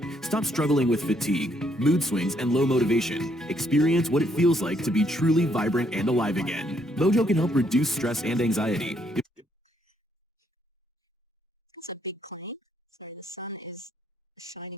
Stop struggling with fatigue, mood swings, and low motivation. Experience what it feels like to be truly vibrant and alive again. Mojo can help reduce stress and anxiety. It's a big claim. So the sun is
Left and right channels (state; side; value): normal; both; correlation 0.72